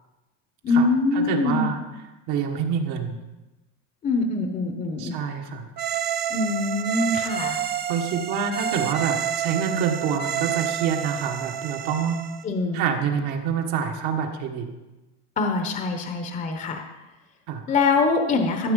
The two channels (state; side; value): normal; both; correlation 0.23